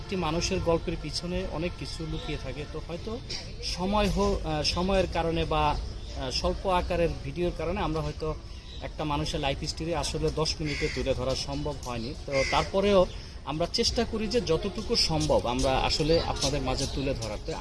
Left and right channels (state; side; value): identical; both; correlation 1.00